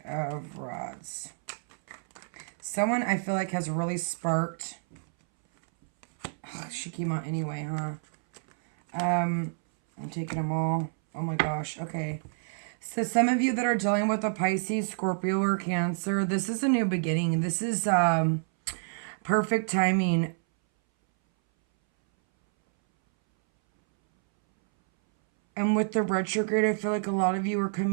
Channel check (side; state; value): left; silent; 59 dB below the other